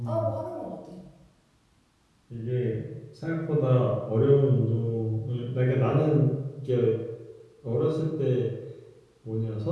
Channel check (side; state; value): both; identical; correlation 1.00